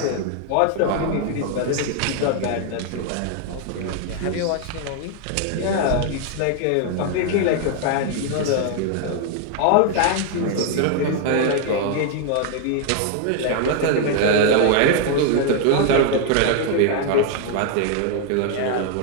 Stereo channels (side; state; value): both; different; correlation 0.00